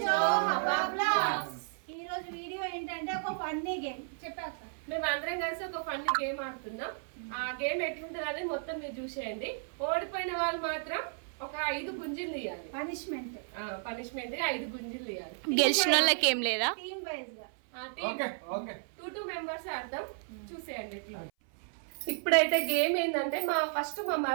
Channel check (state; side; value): silent; left; 56 dB below the other